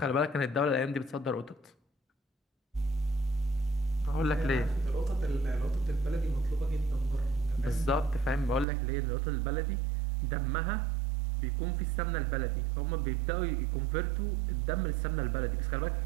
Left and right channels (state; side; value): drops out; left; at 8.7 s